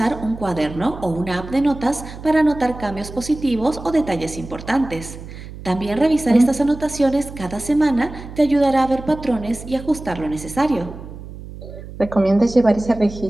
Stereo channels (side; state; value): right; noise; hum, 13 dB below the sound